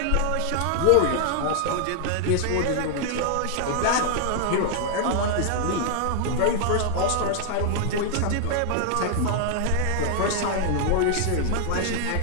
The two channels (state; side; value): different; both; correlation 0.00